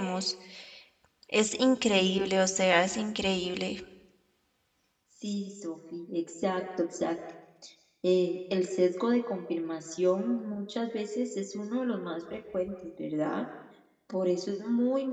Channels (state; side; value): identical; both; correlation 1.00